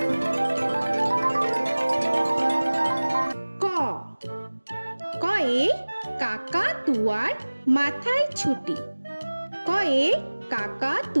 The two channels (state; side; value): inverted; both; correlation -1.00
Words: ক কয়ে কাকা তুয়ার মাথায় ছুটি। কয়ে কাকা